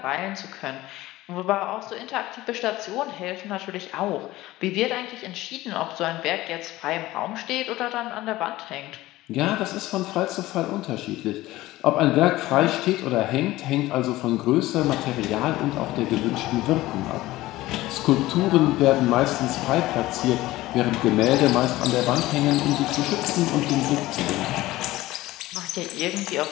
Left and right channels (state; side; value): quieter; right; 17.4 dB